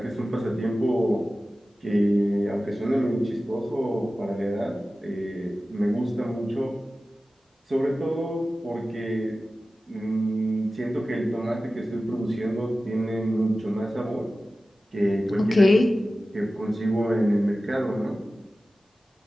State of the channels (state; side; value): normal; both; correlation 0.95